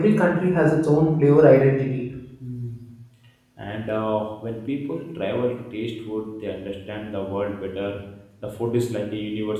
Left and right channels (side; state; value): both; identical; correlation 1.00